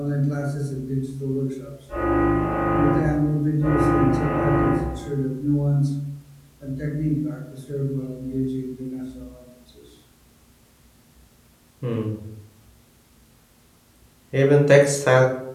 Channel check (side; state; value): both; identical; correlation 1.00